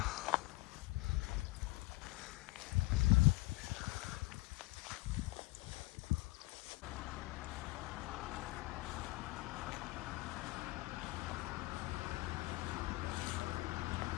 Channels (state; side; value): quieter; right; 21.3 dB